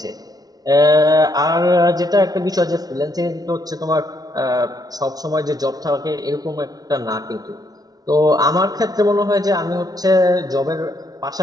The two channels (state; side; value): late; left; 0.19 ms